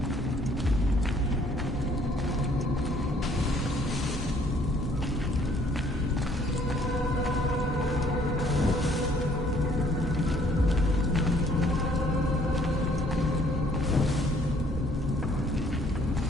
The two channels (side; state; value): both; normal; correlation 0.62